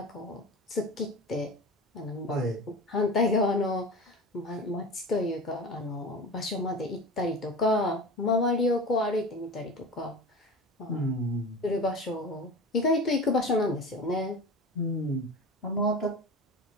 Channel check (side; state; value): both; normal; correlation 0.31